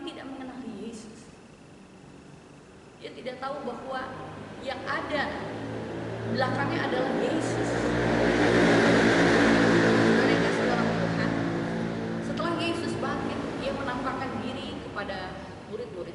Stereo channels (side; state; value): both; identical; correlation 1.00